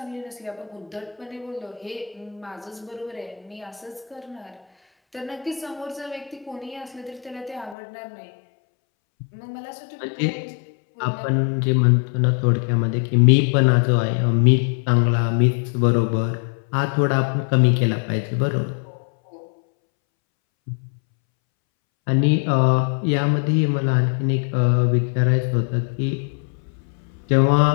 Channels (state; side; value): drops out; right; at 7.8 s